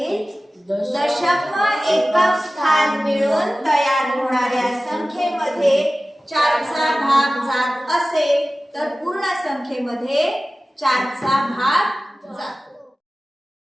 दशक व एकक स्थान मिळून तयार होणाऱ्या संख्येमध्ये 4चा भाग जात असेल तर पूर्ण संख्येमध्ये 4चा भाग जातो.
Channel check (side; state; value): both; normal; correlation 0.96